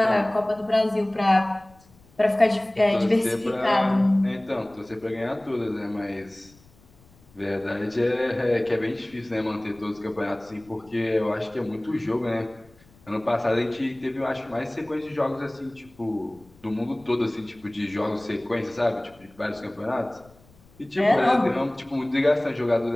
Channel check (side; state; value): left; noise; rumble, 28 dB below the sound